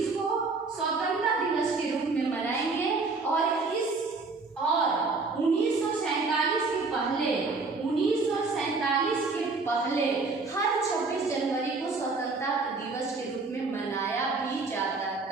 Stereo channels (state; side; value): quieter; left; 4.0 dB